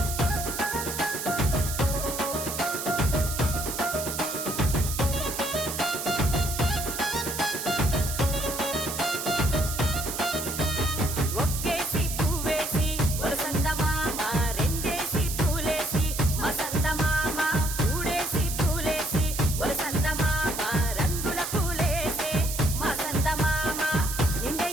ఒక్కేసి పువ్వేసి వరసంద మామ రెండేసి పూలేసి మసంద మామ మూడేసి పూలేసి వరసంద మామ రంగుల పూలేసే మసంద మామ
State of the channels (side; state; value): right; noise; hiss, 5 dB below the sound